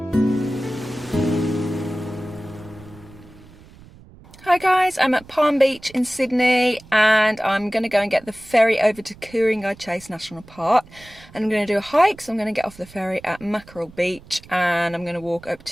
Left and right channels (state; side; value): noise; right; rumble, 22 dB below the sound